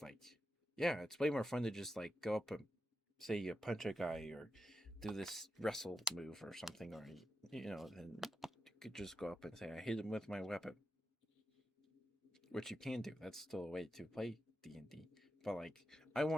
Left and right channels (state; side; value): normal; both; correlation 0.88